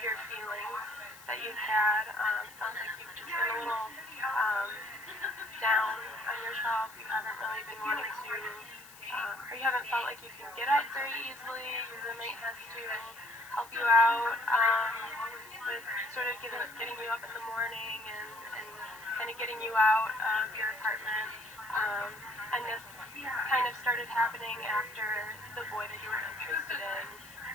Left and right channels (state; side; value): noise; left; hiss, 20 dB below the sound